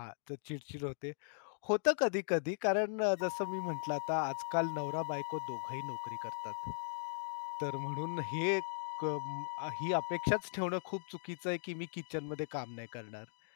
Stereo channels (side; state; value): right; silent; digital silence